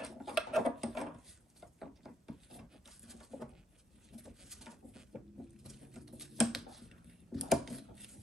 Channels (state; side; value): normal; both; correlation 0.75